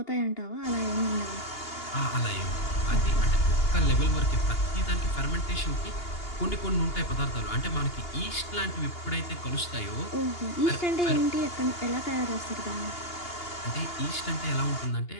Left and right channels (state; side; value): late; right; 2.8 ms